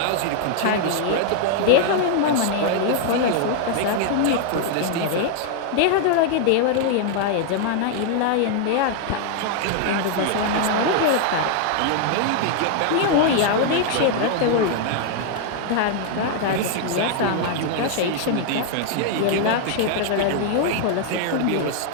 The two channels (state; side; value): different; both; correlation 0.00